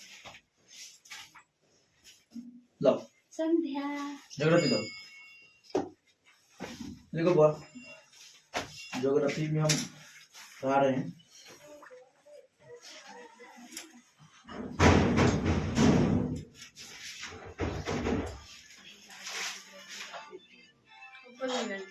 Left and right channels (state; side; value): identical; both; correlation 1.00